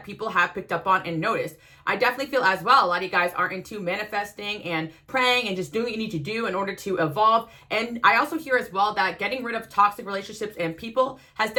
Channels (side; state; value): both; identical; correlation 1.00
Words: people have picked up on and noticed. I definitely feel as well, a lot of you guys are into manifesting and praying and just doing what you need to do in order to evolve, and I also hear as well that getting rid of toxic relationships and people has